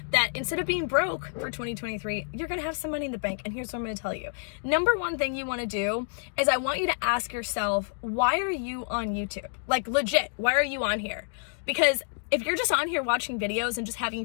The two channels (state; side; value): silent; right; digital silence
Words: that instead of being broke for 2023, you're gonna have some money in the bank. And here's what I'm gonna tell you. Number one thing you wanna do is I want you to ask yourself, why are you on YouTube? Like legit, why are you on here? Because if you're just on here watching videos and just having